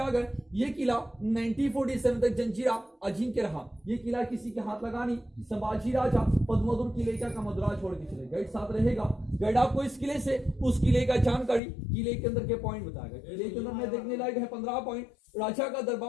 गए। ये किला 1947 तक जंजीरा अजिंक्य रहा। ये किला किसी के हाथ लगा नहीं। संभाजी राजा पद्मोदर किले का मदुरा छोड़ के चले। गाइड साथ रहेगा। गाइड आपको इस किले से उस किले का जानकारी किले के अंदर के पॉइंट बताएगा। किले के अंदर में देखने लायक है 15 पॉइंट। राजा का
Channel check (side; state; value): right; drops out; at 11.6 s